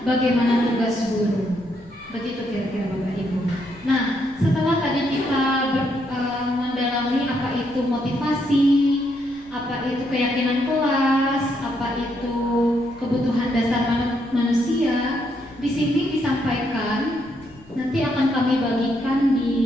bagaimana tugas guru. Begitu kira-kira Bapak Ibu. Nah, setelah tadi kita mendalami apa itu motivasi, apa itu keyakinan kelas, apa itu kebutuhan dasar manusia, di sini disampaikan, nanti akan kami bagikan di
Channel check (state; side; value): noise; left; rumble, 25 dB below the sound